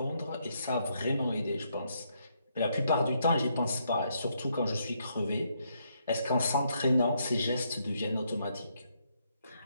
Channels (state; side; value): inverted; both; correlation -0.75